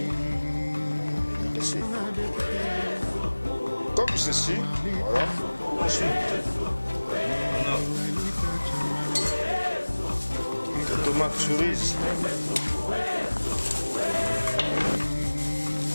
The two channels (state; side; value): inverted; both; correlation -1.00